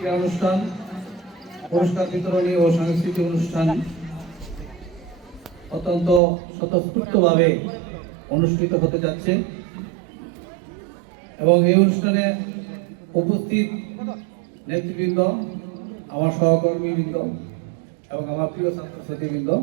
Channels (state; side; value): drops out; left; at 6.2 s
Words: অনুষ্ঠান, পুরস্কার বিতরণী ও সাংস্কৃতিক অনুষ্ঠান অত্যন্ত স্বতঃস্ফূর্তভাবে অনুষ্ঠিত হতে যাচ্ছে এবং এই অনুষ্ঠানে উপস্থিত নেতৃবৃন্দ, আমার সহকর্মীবৃন্দ এবং আমার প্রিয় ছাত্রছাত্রীবৃন্দ